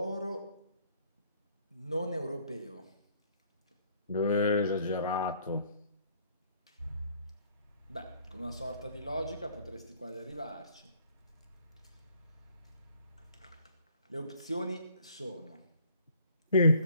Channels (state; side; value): inverted; both; correlation -0.60